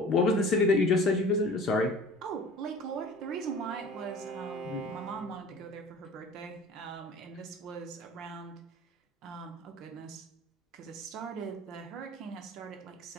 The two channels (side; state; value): both; normal; correlation 0.43